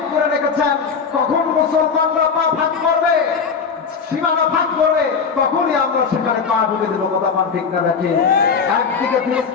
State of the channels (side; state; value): right; quieter; 5.7 dB